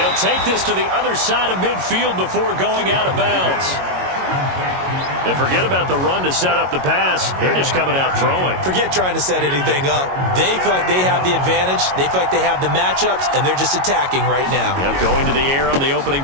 take this to the other side of midfield before going out of bounds. And forget about the run to set up the pass. They're just coming out throwing. Forget trying to set anything up. They feel like they have the advantage. They feel like they have the matchups, and they're just attacking right now. Yep, going to the air on the opening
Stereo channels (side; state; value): left; late; 22 ms